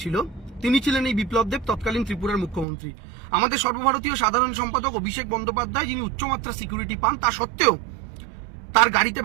তিনি ছিলেন এই বিপ্লব দেব, তৎকালীন ত্রিপুরার মুখ্যমন্ত্রী। আমাদের সর্বভারতীয় সাধারণ সম্পাদক অভিষেক বন্দ্যোপাধ্যায়, যিনি উচ্চমাত্রা সিকিউরিটি পান, তা সত্ত্বেও তার গাড়িতে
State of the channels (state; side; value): drops out; left; at 2.7 s